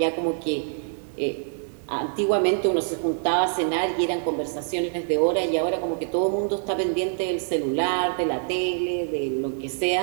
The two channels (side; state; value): left; silent; digital silence